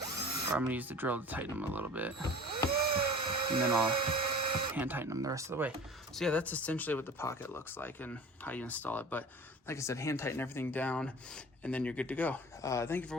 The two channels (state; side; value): normal; both; correlation 0.42